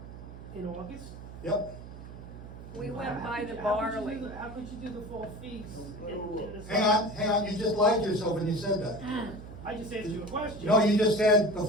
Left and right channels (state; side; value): noise; right; hum, 13 dB below the sound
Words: In August? Yep. We went by the How barley. could you do the fall feast? Hang on, you just lied to yourself when you said that. I just answered you a question. No, you just said the